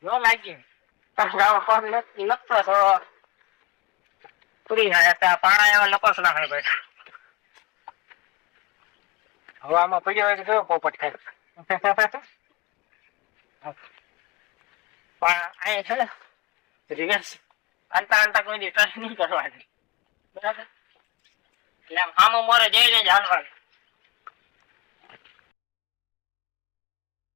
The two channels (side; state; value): right; quieter; 22.2 dB